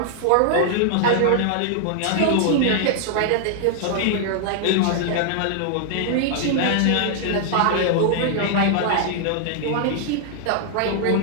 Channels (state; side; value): different; both; correlation -0.01